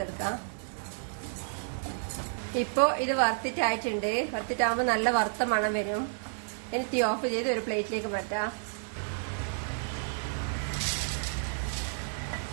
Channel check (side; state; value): left; silent; digital silence